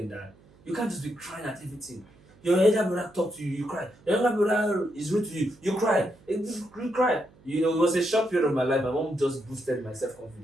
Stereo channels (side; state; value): right; noise; hum, 27 dB below the sound